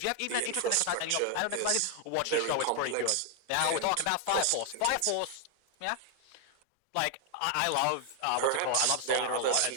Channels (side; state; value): both; different; correlation 0.00